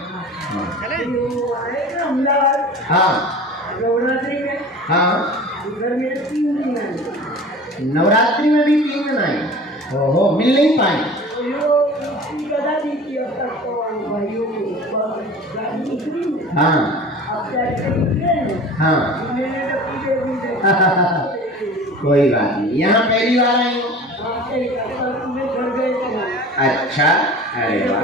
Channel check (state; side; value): normal; both; correlation 0.40